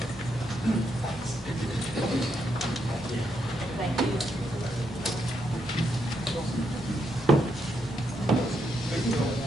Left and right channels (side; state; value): right; noise; rumble, 24 dB below the sound